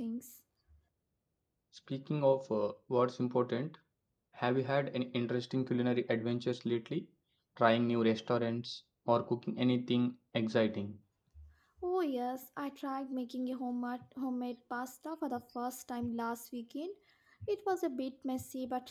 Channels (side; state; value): both; identical; correlation 1.00